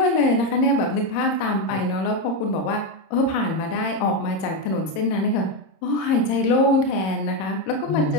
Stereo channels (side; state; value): right; late; 27 ms